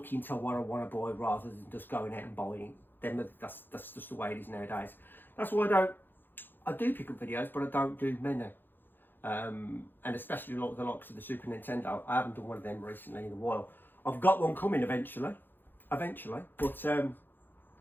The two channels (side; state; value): right; late; 0.096 ms